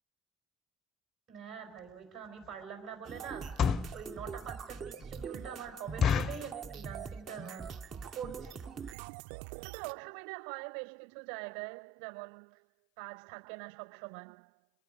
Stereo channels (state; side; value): drops out; left; at 9.0 s